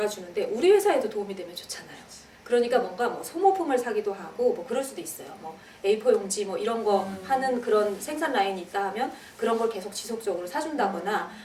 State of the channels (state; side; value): identical; both; correlation 1.00